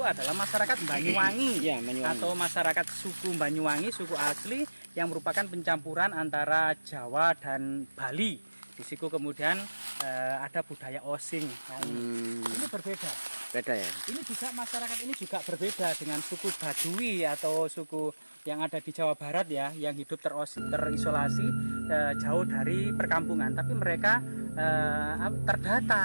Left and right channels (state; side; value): inverted; both; correlation -1.00